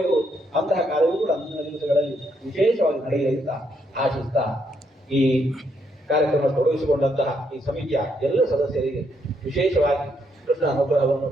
ಅಂತಹ ಕಾರ್ಯವೂ ಕೂಡ ಮುಂದಿನ ದಿವಸಗಳಲ್ಲಿ ವಿಶೇಷವಾಗಿ ನಡೆಯಲಿ ಅಂತ ಆಶಿಸ್ತಾ ಈ ಕಾರ್ಯಕ್ರಮ ತೊಡಗಿಸಿಕೊಂಡಂತಹ ಈ ಸಮಿತಿಯ ಎಲ್ಲ ಸದಸ್ಯರಿಗೆ ವಿಶೇಷವಾಗಿ ಕೃಷ್ಣ ಅನುಗ್ರಹವನ್ನು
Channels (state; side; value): normal; both; correlation 0.75